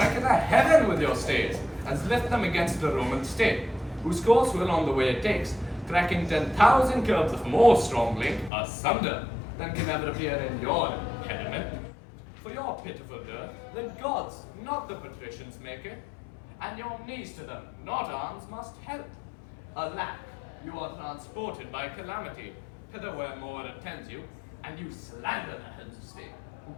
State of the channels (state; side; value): drops out; right; at 8.5 s